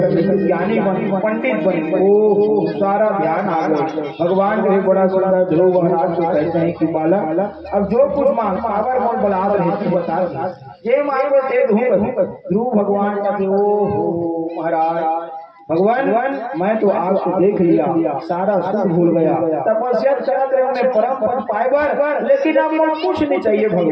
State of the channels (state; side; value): identical; both; correlation 1.00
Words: ज्ञानी बन पंडित बन, वो सारा ध्यान आ गया। भगवान जो है बड़ा सुंदर ध्रुव महाराज को कहते हैं कि बालक अब जो कुछ मांग पावर मोल बना रहे बता ये मांगो दे दूंगा। ध्रुव भगवान का ओ महाराज भगवान मैं तो आपको देख लिया, सारा सुख भूल गया, तपस्या करते रहे उन्हें परम पद पाए, लेकिन अब मुझे कुछ नहीं चाहिए